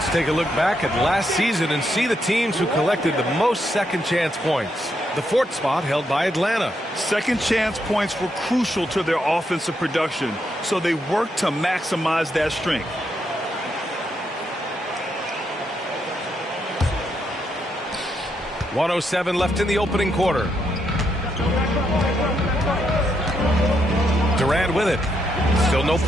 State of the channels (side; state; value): both; normal; correlation 0.79